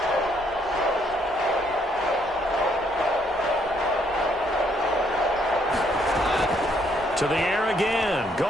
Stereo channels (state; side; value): normal; both; correlation 0.70